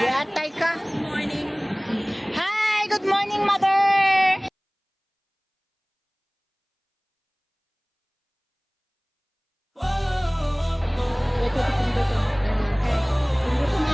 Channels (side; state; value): both; identical; correlation 1.00